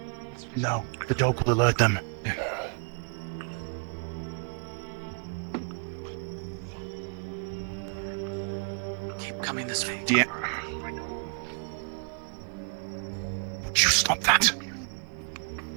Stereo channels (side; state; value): left; quieter; 37.2 dB